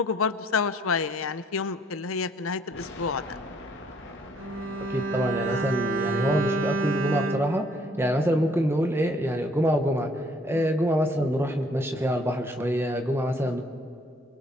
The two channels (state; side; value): normal; both; correlation 0.63